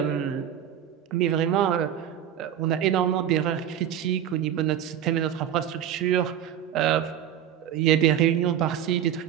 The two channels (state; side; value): quieter; left; 10.0 dB